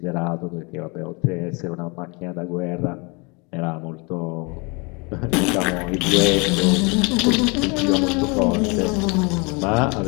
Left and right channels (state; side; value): quieter; right; 29.9 dB